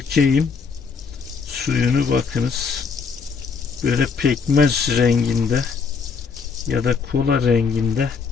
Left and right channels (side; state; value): right; quieter; 5.4 dB